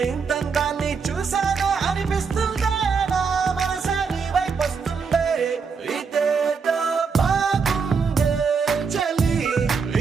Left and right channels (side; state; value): left; quieter; 5.5 dB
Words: ఇంతందాన్ని చూసానే అనిపిస్తుందే, నా మనసే నీ వైపు వస్తుందే. ఇదేదో బాగుందే చలి,